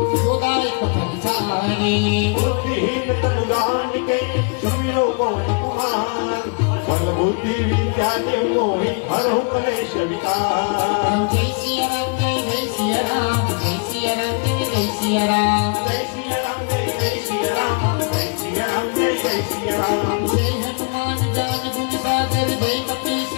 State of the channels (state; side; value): quieter; right; 36.5 dB